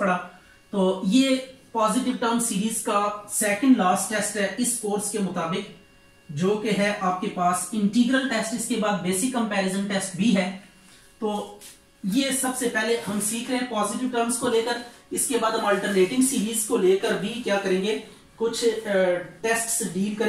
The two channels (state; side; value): identical; both; correlation 1.00